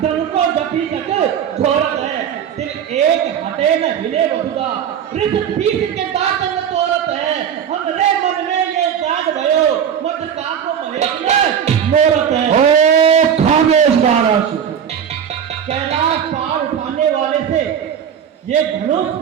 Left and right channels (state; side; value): quieter; left; 8.4 dB